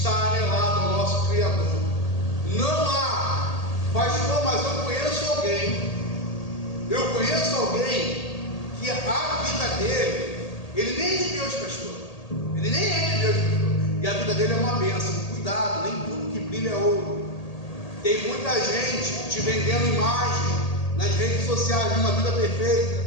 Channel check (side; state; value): right; late; 1.8 ms